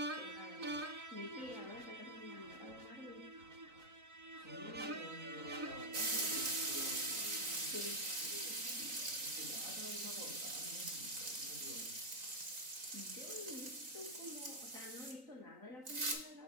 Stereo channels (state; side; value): late; left; 3.9 ms